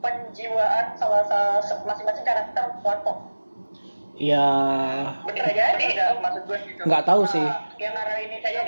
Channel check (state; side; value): inverted; both; correlation -1.00